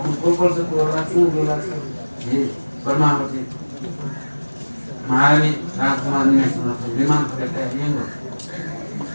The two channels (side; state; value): both; inverted; correlation -1.00